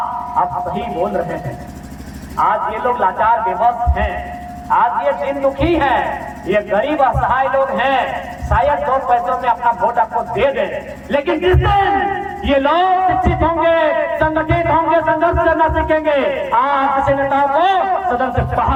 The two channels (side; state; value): both; identical; correlation 1.00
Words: आप सही बोल रहे हैं। आज ये लोग लाचार बेबस हैं, आज ये दिन दुखी हैं, ये गरीब असहाय लोग हैं। शायद 2 पैसों में अपना वोट आपको दे दें, लेकिन जिस दिन ये लोग शिक्षित होंगे, संगठित होंगे, संघर्ष करना सीखेंगे, आज किसी नेताओं को सदन से